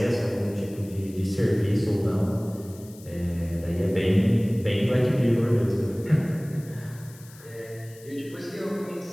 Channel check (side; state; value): left; noise; hiss, 22 dB below the sound